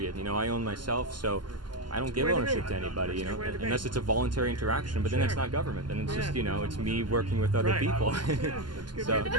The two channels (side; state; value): left; late; 0.71 ms